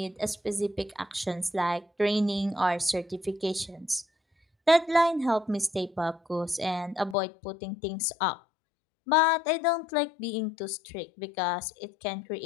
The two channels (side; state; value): right; drops out; at 7.2 s